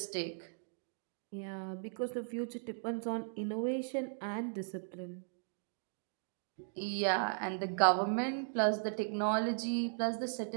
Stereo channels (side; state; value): left; silent; digital silence